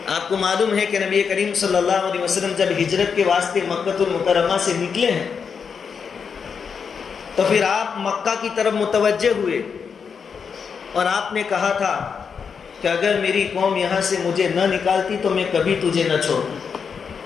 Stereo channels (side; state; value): right; quieter; 6.3 dB